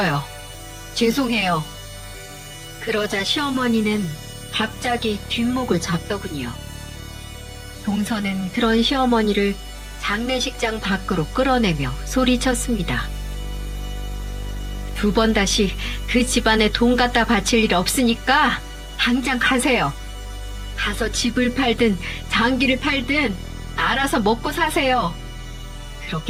죄송해요. 그러자 시어머니는 갑자기 뒷목을 잡더군요. 동서는 그런 시어머니를 장례식장 밖으로 끌어내며 소리쳤습니다. 두 번 다시 그 집안에 돈 갖다 바칠 일 없으니까 당장 가세요. 가서 집을 팔든 장기를 팔든 알아서 먹고 사세요.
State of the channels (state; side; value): identical; both; correlation 1.00